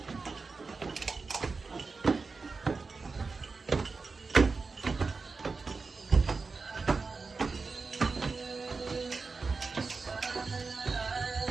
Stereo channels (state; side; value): quieter; left; 4.3 dB